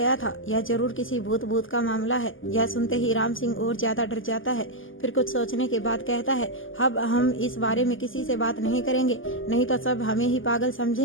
था, यह जरूर किसी भूत का मामला है। यह सुनते ही राम सिंह और ज्यादा डर जाता है। फिर कुछ सोचने के बाद कहता है, अब हम इस बारे में किसी से बात नहीं करेंगे, नहीं तो सब हमें ही पागल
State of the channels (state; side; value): late; right; 0.58 ms